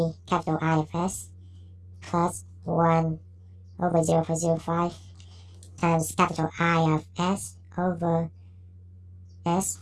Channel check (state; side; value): identical; both; correlation 1.00